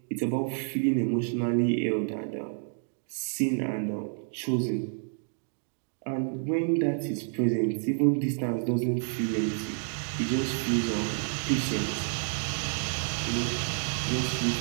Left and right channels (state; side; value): silent; left; 58 dB below the other